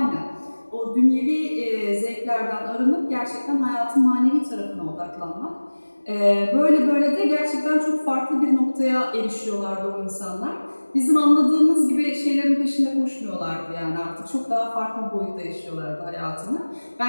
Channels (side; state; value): both; inverted; correlation -1.00